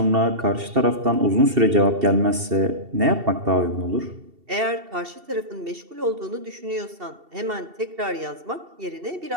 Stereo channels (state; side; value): late; left; 2.7 ms